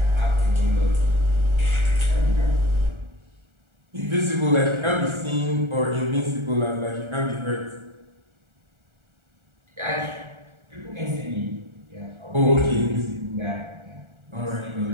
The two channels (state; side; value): late; left; 1.4 ms